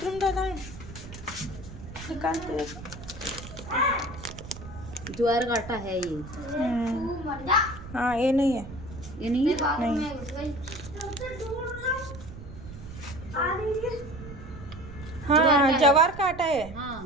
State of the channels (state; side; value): noise; right; rumble, 13 dB below the sound